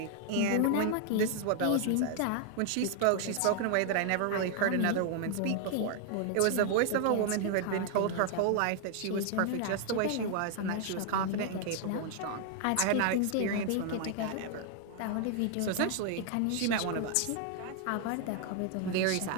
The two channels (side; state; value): both; different; correlation 0.00